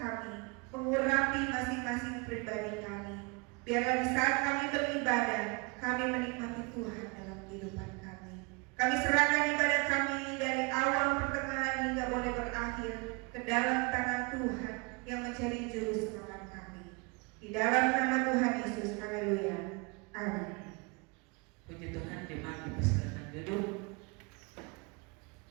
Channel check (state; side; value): quieter; left; 30.7 dB